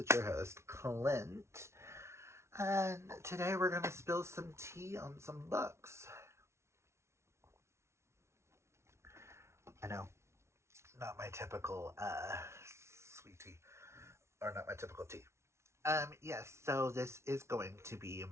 your host, Clint. And today we're going to spill some tea on some books. I know, not my typical sweet tea, or not my typical tea. Yes, so this is going to be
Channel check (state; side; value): late; left; 0.13 ms